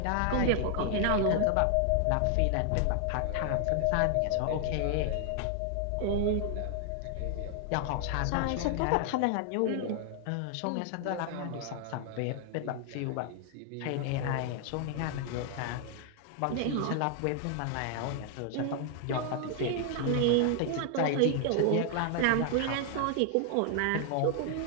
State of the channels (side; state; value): both; different; correlation 0.00